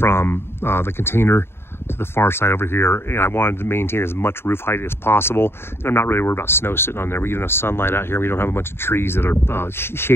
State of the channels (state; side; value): late; right; 0.11 ms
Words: the container to the far side over here, and I wanted to maintain as much roof height as possible. And I'm not really worried about snow sitting on there. We get enough sunlight out here. We don't have a bunch of trees that are